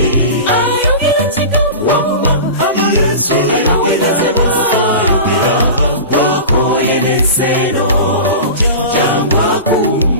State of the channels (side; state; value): both; inverted; correlation -0.31